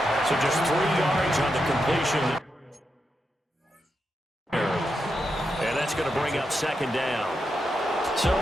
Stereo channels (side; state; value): both; normal; correlation 0.86